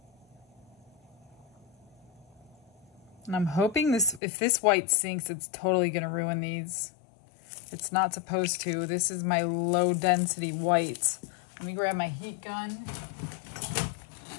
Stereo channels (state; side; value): drops out; right; at 4.2 s